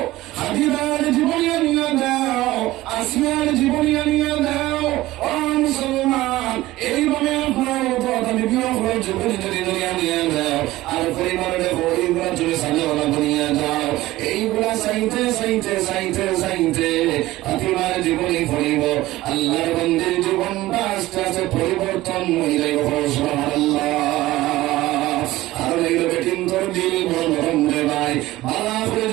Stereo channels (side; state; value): left; quieter; 17.2 dB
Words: হাজিদার জীবনী আনিয়ে দাও, আসিয়ার জীবনী আনিয়ে দাও। ও মুসলমান, এইভাবে আপনার বিভিন্ন জীবনী যদি আনিয়ে দাও আর পরিবারের এইগুলা তুমি সাজাওয়ালা বনিয়ে যাও, এইগুলা চাইতে চাইতে চাইতে চাইতে ফাতিমার জীবনী পড়িব, আল্লাহর বান্দার জীবনটা আস্তে আস্তে পরিবর্তন হয়ে যাইব। সুবহানাল্লাহ। আর এইগুলো কিন্তু দিল নরম রে ভাই, ভালো করে